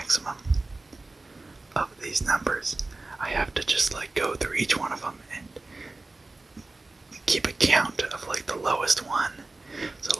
of these numbers, I have to just go through each one of them and keep a count of the lowest one. So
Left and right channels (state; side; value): quieter; left; 3.2 dB